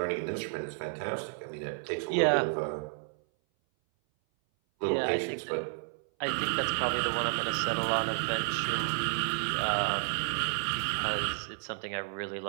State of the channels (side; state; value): left; silent; 57 dB below the other